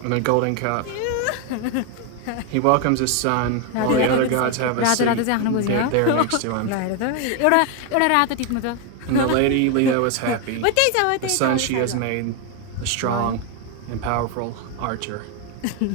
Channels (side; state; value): both; different; correlation 0.01